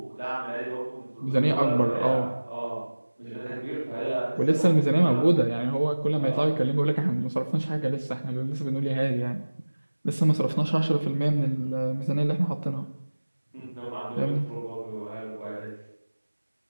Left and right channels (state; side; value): inverted; both; correlation -1.00